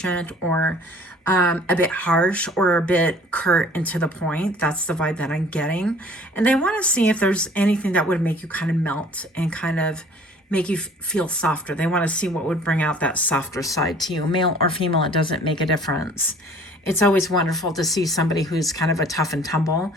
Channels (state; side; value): normal; both; correlation 0.52